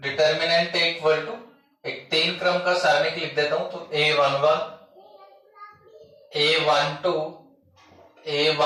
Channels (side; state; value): both; identical; correlation 1.00